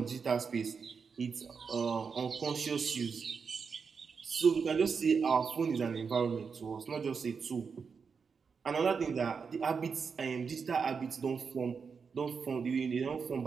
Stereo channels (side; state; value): left; quieter; 5.7 dB